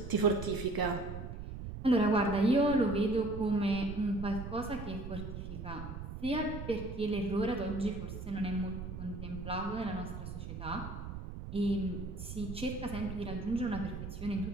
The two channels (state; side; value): noise; right; rumble, 8 dB below the sound